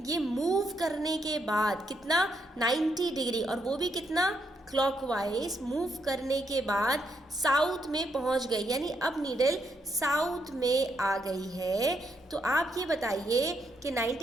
ये मूव करने के बाद कितना 90 डिग्री, और वो भी कितना क्लॉकवाइज मूव करने के बाद साउथ में पहुंच गई। यानी अब नीडल साउथ में आ गई है, तो आप ये बताइए कि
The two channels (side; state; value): both; normal; correlation 0.78